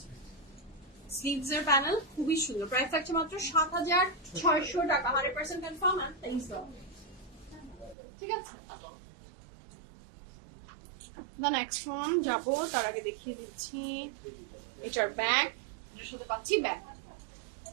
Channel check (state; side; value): drops out; left; at 8.0 s